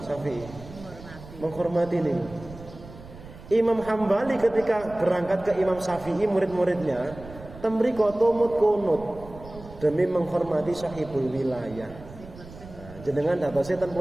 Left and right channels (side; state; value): right; noise; rumble, 17 dB below the sound